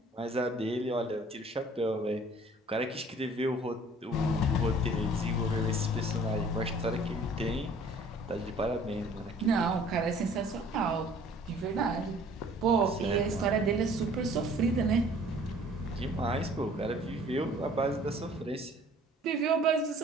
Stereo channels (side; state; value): both; normal; correlation 0.53